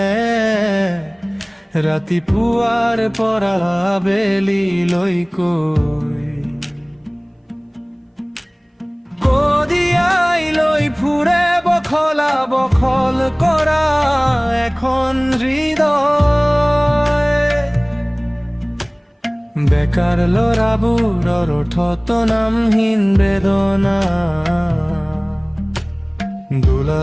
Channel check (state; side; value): identical; both; correlation 1.00